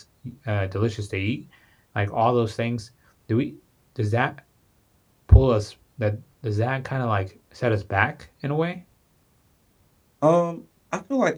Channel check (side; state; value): both; identical; correlation 1.00